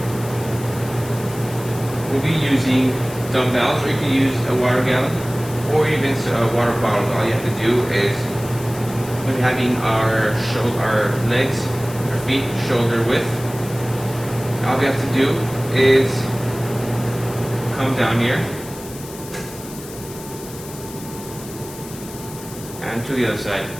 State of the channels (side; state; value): left; noise; hiss, 15 dB below the sound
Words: we'll be using dumbbells, or you can use a water gallon or even water bottles. All you have to do is, when having our legs, our feet shoulder width, all we have to do is come down here and to the other side.